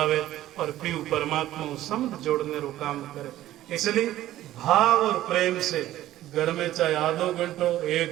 और पीऊ परमात्मा को समझ जोड़ने रो काम करे। इसलिए भाव और प्रेम से घर में चाहे आधो घंटो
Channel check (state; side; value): quieter; left; 14.1 dB